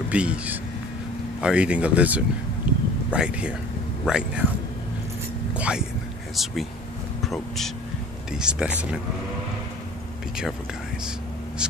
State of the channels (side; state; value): both; normal; correlation 0.45